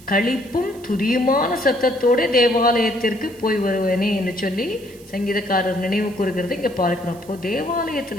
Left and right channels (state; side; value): noise; right; hiss, 24 dB below the sound